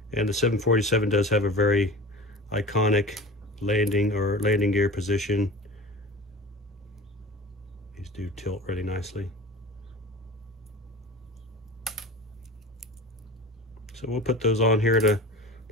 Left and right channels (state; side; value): normal; both; correlation 0.36